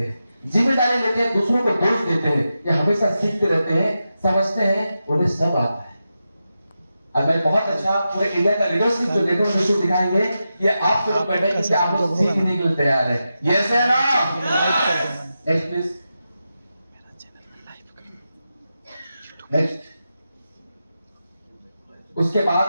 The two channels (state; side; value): inverted; both; correlation -0.90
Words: हैं, जिम्मेदारी लेते हैं, दूसरों को दोष देते हैं, या हमेशा सीखते रहते हैं, समझते हैं उन्हें सब आता है। अब मैं बहुत अच्छा पूरे इंडिया का लीडरशिप जो लेटर में दिखाएंगे, ये आप लोग बैठे कि आप लोग सीखने के लिए तैयार है। यस है ना? Next please. नेक्स्ट, उसके